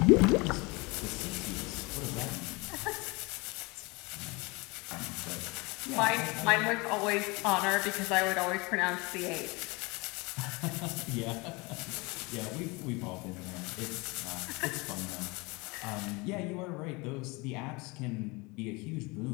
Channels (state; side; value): quieter; right; 25.9 dB